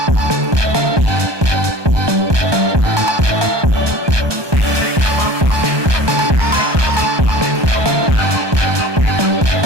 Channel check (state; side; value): late; left; 1.2 ms